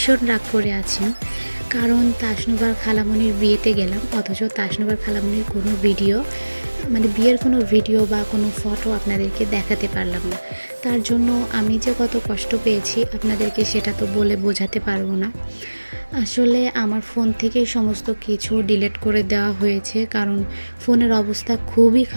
রাগ করে আছেন, কারণ তাসনুবার খালামণির বিয়েতে গেলাম, অথচ তাসনুবার খালামণির কোনো ভিডিও বিয়ের কোনো ভিডিও বা কোনো ফটো আপনাদেরকে দেখাতে পারলাম না। তার জন্য আমি যে কত কষ্ট পেয়েছি আপনাদেরকে সেটা তো বলে বোঝাতে পারবো না। আসলে আমার ফোন থেকে সমস্ত কিছু ডিলিট করে দেওয়া হয়েছে, কারণ ফোনের অবস্থা খুবই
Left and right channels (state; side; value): inverted; both; correlation -1.00